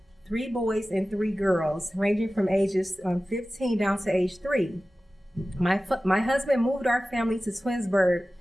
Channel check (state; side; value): normal; both; correlation 0.96